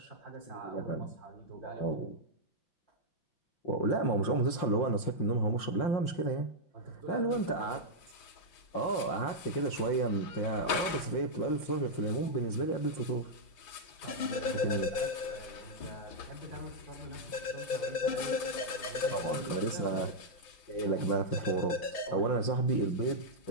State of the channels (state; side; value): late; right; 5.8 ms